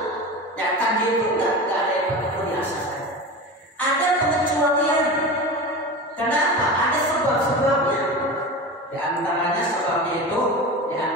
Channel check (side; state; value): both; normal; correlation 0.28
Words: Ya kan, dia itu nggak ada yang biasa saja. Ada pengecualian. Kenapa? Ada sebab-sebabnya. Di antaranya sebabnya itu, di